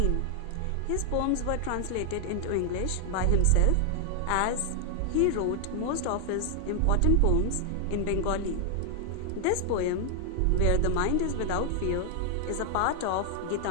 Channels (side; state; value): both; different; correlation 0.00